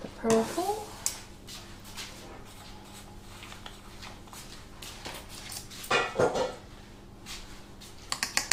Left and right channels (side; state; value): both; identical; correlation 1.00